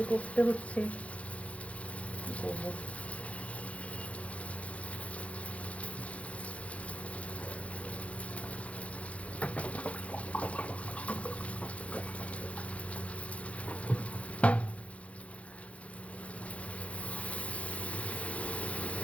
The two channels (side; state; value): right; late; 0.064 ms